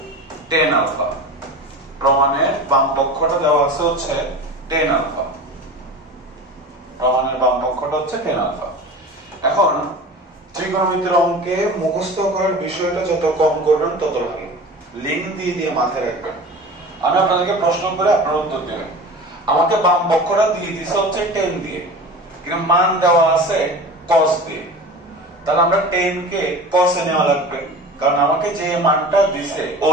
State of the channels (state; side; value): normal; both; correlation 0.35